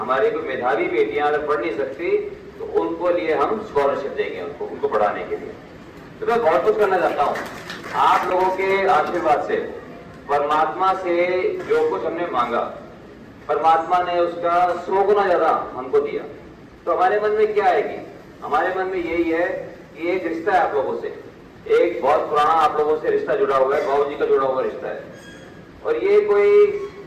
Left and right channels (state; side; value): identical; both; correlation 1.00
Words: कोई मेधावी बेटियां अगर पढ़ नहीं सकती तो उनको लिए हम स्कॉलरशिप देंगे, उनको पढ़ाने के लिए। तो मैं बहुत कुछ करना चाहता हूँ। आप लोगों के आशीर्वाद से, परमात्मा से जो कुछ हमने मांगा, परमात्मा ने उसका 100 गुना ज्यादा हमको दिया। तो हमारे मन में क्या है कि हमारे मन में यही है कि एक रिश्ता है आप लोगों से, एक बहुत पुराना आप लोगों से रिश्ता जुड़ा हुआ है, बाबूजी का जुड़ा हुआ रिश्ता है। और ये कोई